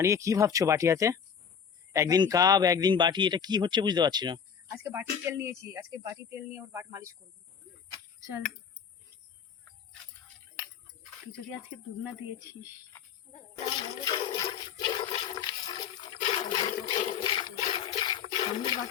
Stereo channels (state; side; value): quieter; right; 7.3 dB